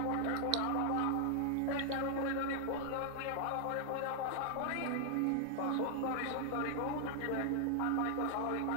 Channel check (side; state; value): both; different; correlation 0.00